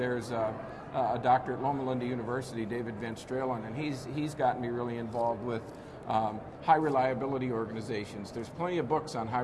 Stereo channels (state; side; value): identical; both; correlation 1.00